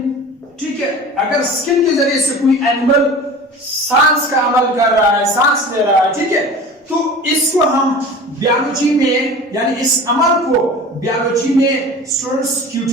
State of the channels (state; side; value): normal; both; correlation 0.38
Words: ठीक है। अगर स्किन के जरिए से कोई एनिमल सांस का अमल कर रहा है, सांस ले रहा है, ठीक है, तो इसको हम बायोलॉजी में, यानी इस अमल को बायोलॉजी में स्टूडेंट्स